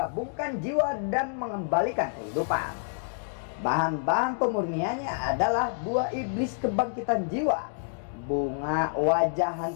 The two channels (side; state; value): right; silent; digital silence